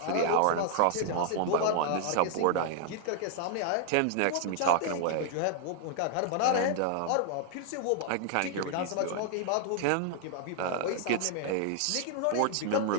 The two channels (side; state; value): both; different; correlation 0.00